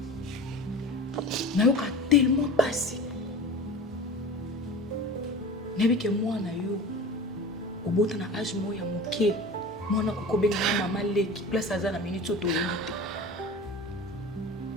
na yo ka tellement passé nebi ke mwana yo obota na âge moya moke mwana kokobenga na mama leki place aza na minute oto yite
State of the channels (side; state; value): both; normal; correlation 0.35